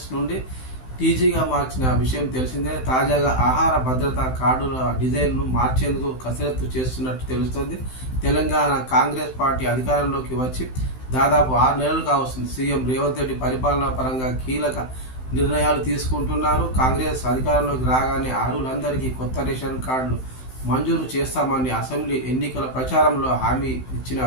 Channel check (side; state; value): right; late; 16 ms